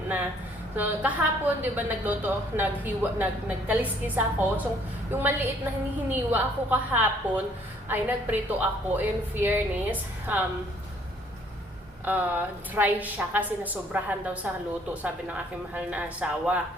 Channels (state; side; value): normal; both; correlation 0.61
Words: na. So, kahapon, di ba, nagkaliskis ako. So, yung maliit na hinihiniwa ako kahapon, ay nagprito ako. In fairness, dry siya kasi nasobrahan daw sa luto, sabi ng aking mahal na asawa.